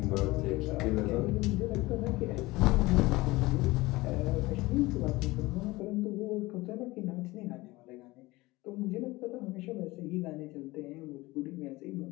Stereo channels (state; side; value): quieter; right; 20.6 dB